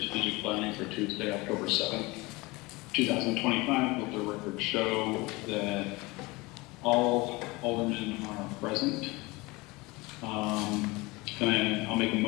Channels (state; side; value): quieter; right; 23.3 dB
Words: planning for Tuesday, October 7th, 2025. Let the record show that all aldermen are present. And I'll make a